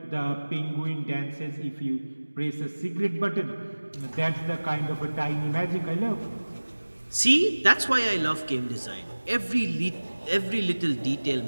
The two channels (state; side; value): inverted; both; correlation -1.00